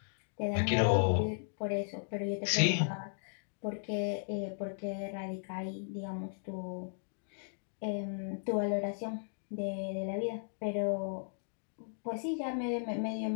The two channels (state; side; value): silent; right; digital silence